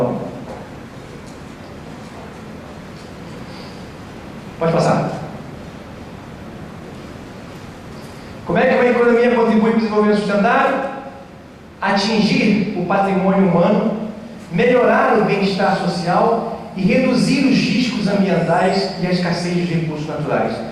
Pode passar. Como é que uma economia contribui para o desenvolvimento sustentável? Atingir o patrimônio humano, melhorar o bem-estar social e reduzir os riscos ambientais e a escassez de recursos naturais.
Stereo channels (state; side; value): identical; both; correlation 1.00